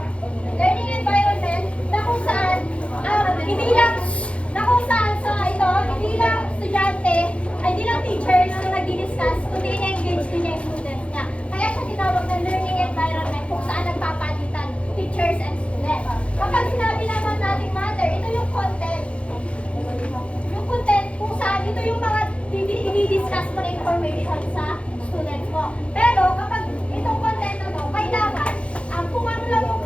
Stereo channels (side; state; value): right; late; 0.061 ms